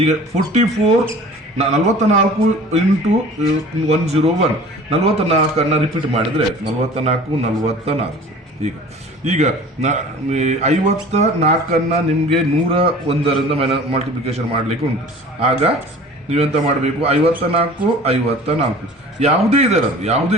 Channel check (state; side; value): normal; both; correlation 0.44